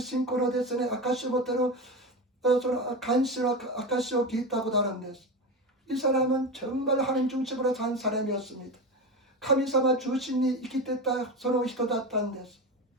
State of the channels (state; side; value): normal; both; correlation 0.22